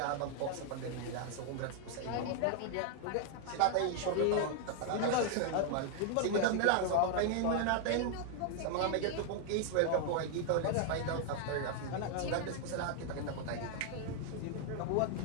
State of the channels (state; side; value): different; both; correlation 0.00